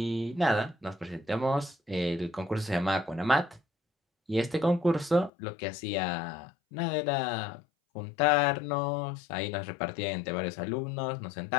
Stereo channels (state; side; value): drops out; right; at 5.3 s